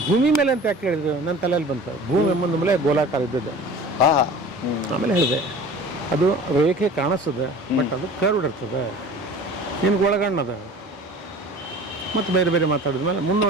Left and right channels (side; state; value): both; normal; correlation 0.41